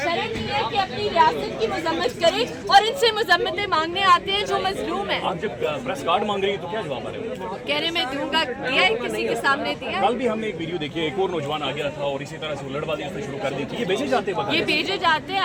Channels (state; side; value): identical; both; correlation 1.00